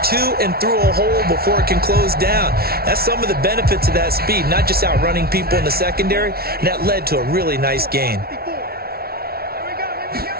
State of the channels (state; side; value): late; left; 0.44 ms